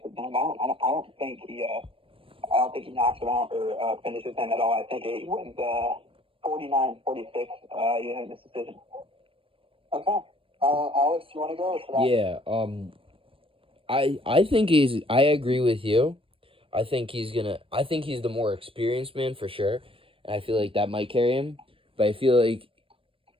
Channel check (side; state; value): left; late; 0.26 ms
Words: it done. I don't think he knocks him out or finishes him at all. I think he wins 49-46 unanimous decision. Okay. Alex, you want to go? Yeah. I agree with you. I think he's the more experienced man for sure, and I feel like that might carry him. But I feel like